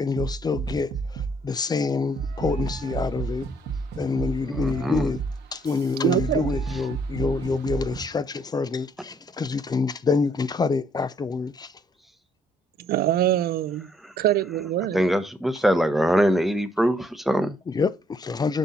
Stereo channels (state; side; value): normal; both; correlation 0.67